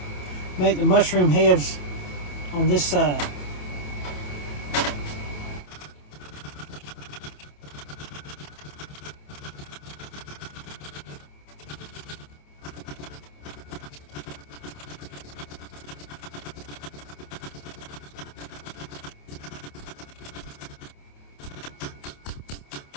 make the mushroom heads on this side.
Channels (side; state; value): right; late; 28 ms